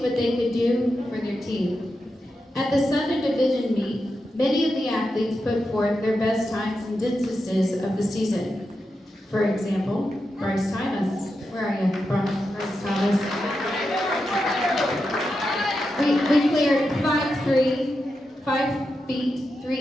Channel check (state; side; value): normal; both; correlation 0.88